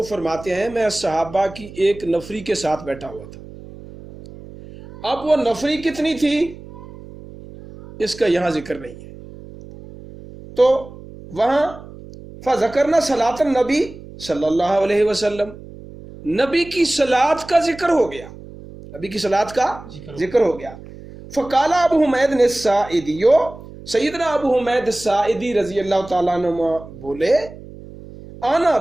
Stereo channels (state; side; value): noise; right; hum, 17 dB below the sound